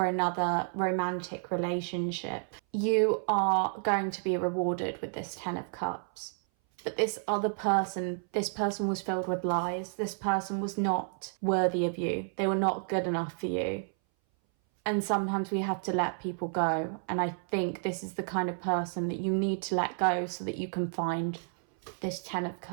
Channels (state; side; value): silent; left; 57 dB below the other